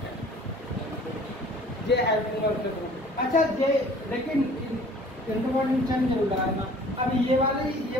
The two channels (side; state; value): both; normal; correlation 0.50